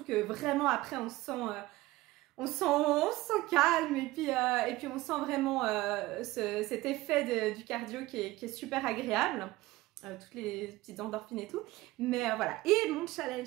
que vraiment après on se sent calme et puis on sent vraiment cet effet du cardio qui est super agréable, toutes les petites endorphines et tout. Mais voilà, et mon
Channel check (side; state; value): left; quieter; 18.5 dB